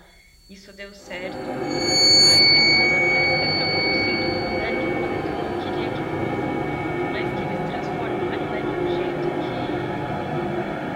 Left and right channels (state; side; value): identical; both; correlation 1.00